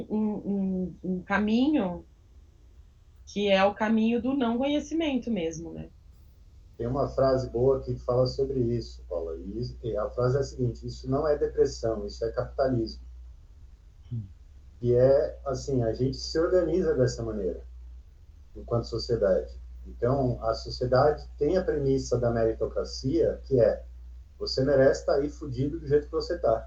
caminho que é o caminho do não conhecimento mesmo, né? tem uma frase boa que fala sobre isso, Paula. E a frase é a seguinte: isso não é depressão, isso é capitalismo. E é assim, a gente se organiza dessa maneira, enquanto sociedade. Então, a sociedade tem a premissa da meritocracia, que é: você merece estar aí fudido do jeito que você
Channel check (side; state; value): both; identical; correlation 1.00